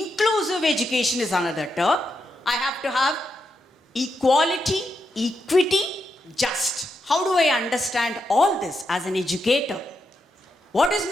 education is another term. I have to have equality, equity, just. How do I understand all this as an educator? What is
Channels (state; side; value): normal; both; correlation 0.84